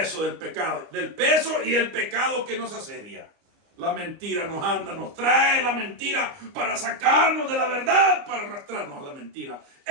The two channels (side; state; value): left; late; 29 ms